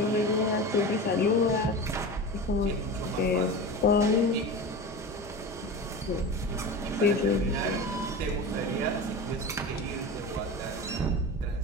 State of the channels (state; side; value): normal; both; correlation 0.29